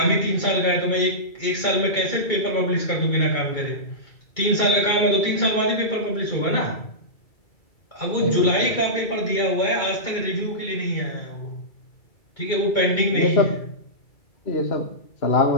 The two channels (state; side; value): late; right; 2.3 ms